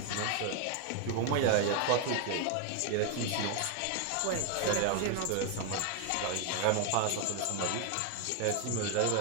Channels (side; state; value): both; different; correlation 0.01